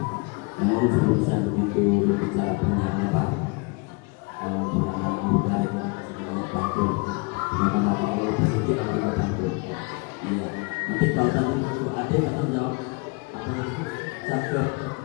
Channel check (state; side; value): quieter; right; 29.6 dB